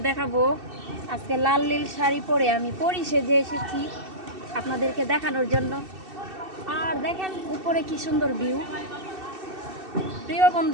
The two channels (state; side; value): late; left; 2.7 ms